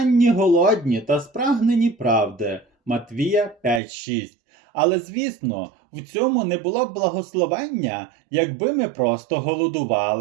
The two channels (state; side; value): drops out; left; at 3.8 s